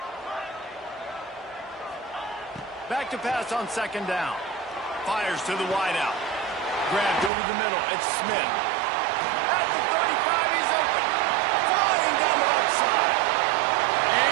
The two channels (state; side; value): drops out; left; at 7.3 s